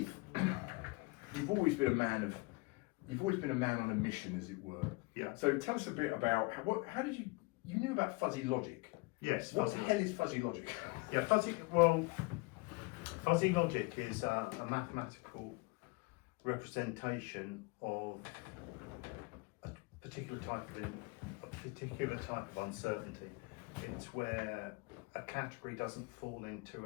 you've always been a man on a mission, as it were. Yeah. So tell us a bit about how did you knew about fuzzy logic? Yes. What the hell is fuzzy logic? Yeah, fuzzy logic is a mathematical representation of a particular type of uncertainty. It's where a category doesn't fall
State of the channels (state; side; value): quieter; right; 26.1 dB